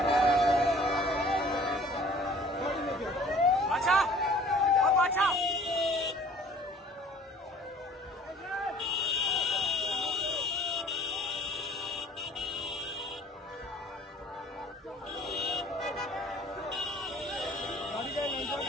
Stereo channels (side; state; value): both; normal; correlation 0.51